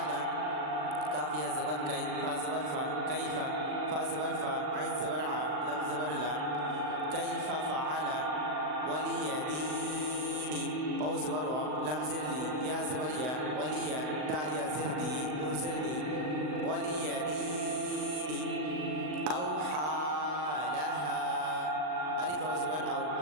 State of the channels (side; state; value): left; late; 39 ms